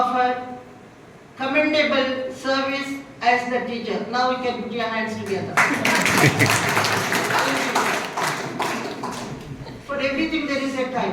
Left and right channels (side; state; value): both; identical; correlation 1.00